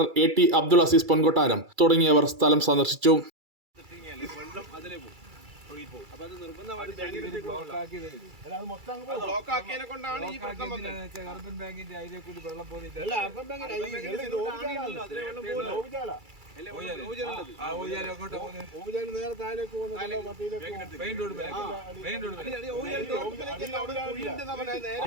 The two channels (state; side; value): late; left; 2.3 ms